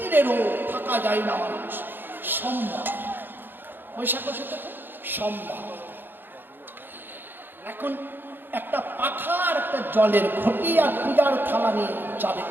রোদ, থাকা যায় না মানুষ। সোমবার, বৈশাখ মাসে থেকে সোমবার, এখন একটা পাখা আর একটা জলের ঘটি আর পূজার থালা নিয়ে যাবে।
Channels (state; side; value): late; left; 0.096 ms